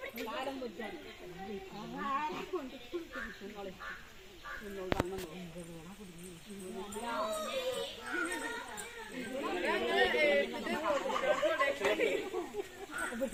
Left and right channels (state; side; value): identical; both; correlation 1.00